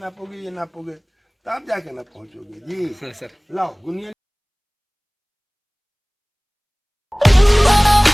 ये नापोगे, तब जाके ना पहुंचोगे जी। सर लाओ गुनिया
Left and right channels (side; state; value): both; identical; correlation 1.00